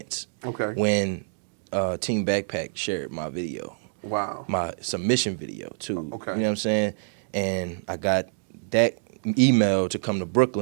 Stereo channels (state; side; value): silent; left; digital silence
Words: when Team Backpack shared my video. My submission video too. You know what I'm saying? And I got that email to come to